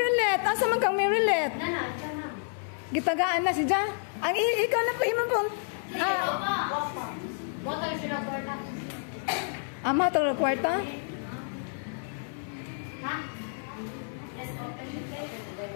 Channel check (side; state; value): right; silent; digital silence